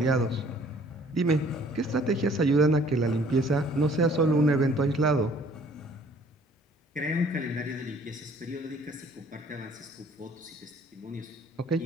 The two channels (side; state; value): both; normal; correlation 0.56